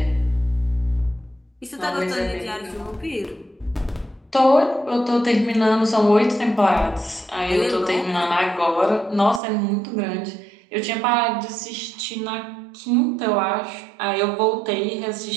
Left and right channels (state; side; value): drops out; left; at 9.4 s